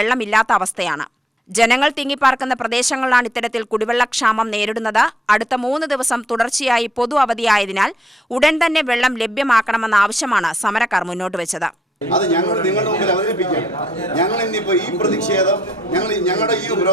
അവസ്ഥയാണ്. ജനങ്ങൾ തിങ്ങിപ്പാർക്കുന്ന പ്രദേശങ്ങളിലാണ് ഇത്തരത്തിൽ കുടിവെള്ളക്ഷാമം നേരിടുന്നത്. അടുത്ത 3 ദിവസം തുടർച്ചയായി പൊതു അവധിയായതിനാൽ ഉടൻ തന്നെ വെള്ളം ലഭ്യമാക്കണമെന്ന ആവശ്യമാണ് സമരക്കാർ മുന്നോട്ട് വെച്ചത്. അത് ഞങ്ങൾ നിങ്ങളുടെ മുമ്പിൽ അവതരിപ്പിക്കാം. ഞങ്ങൾ ഇന്നിപ്പോൾ ഈ പ്രതിഷേധം ഞങ്ങളുടെ ഈ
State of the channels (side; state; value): both; normal; correlation 0.70